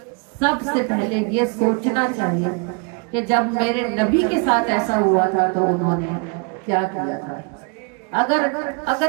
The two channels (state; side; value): quieter; left; 34.1 dB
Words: سب سے پہلے یہ سوچنا چاہیے کہ جب میرے نبی کے ساتھ ایسا ہوا تھا تو انہوں نے کیا کیا تھا۔